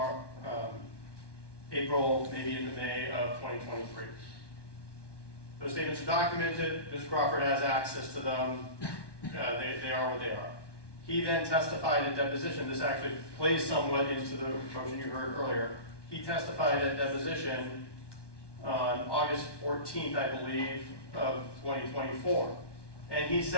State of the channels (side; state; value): right; late; 1.2 ms